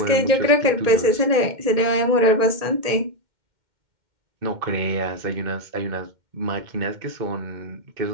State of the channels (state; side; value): late; left; 2.1 ms